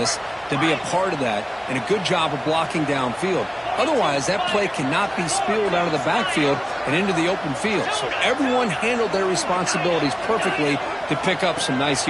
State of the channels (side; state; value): both; identical; correlation 1.00